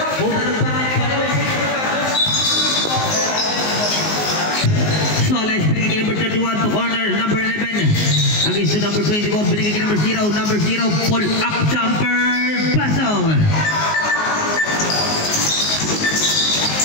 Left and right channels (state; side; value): late; right; 19 ms